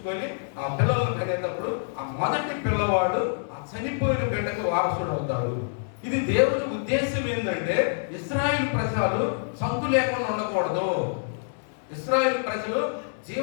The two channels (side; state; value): right; silent; digital silence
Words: ఆ పిల్లలను కనేటప్పుడు ఆ మొదటి పిల్లవాడు ఆ చనిపోయిన బిడ్డకు వారసుడు అవుతాడు. ఇది దేవుని ఉద్దేశం ఏంటంటే, ఇశ్రాయేలు ప్రజలు సంతు లేకుండా ఉండకూడదు, ఇశ్రాయేలు ప్రజలు